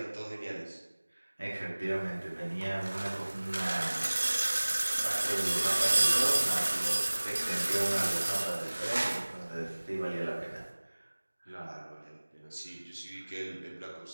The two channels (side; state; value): both; inverted; correlation -1.00